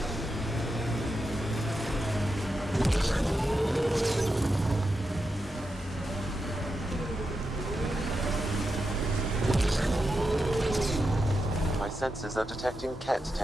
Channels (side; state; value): both; normal; correlation 0.87